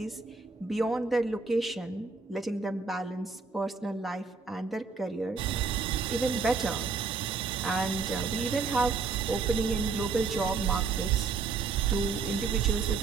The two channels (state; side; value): quieter; left; 4.6 dB